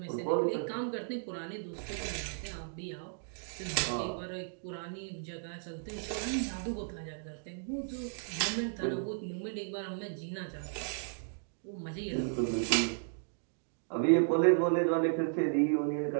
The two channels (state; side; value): silent; left; digital silence